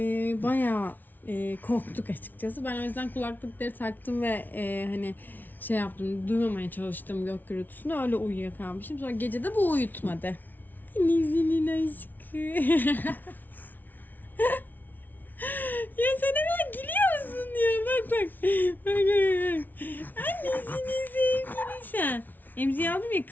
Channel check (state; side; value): late; right; 0.085 ms